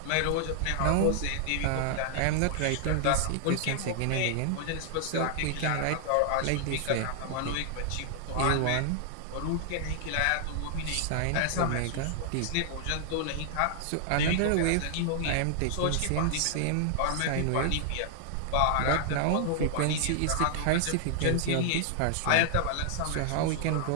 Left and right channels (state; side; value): different; both; correlation 0.00